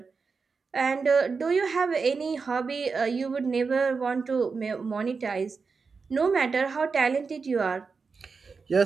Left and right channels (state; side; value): quieter; left; 4.9 dB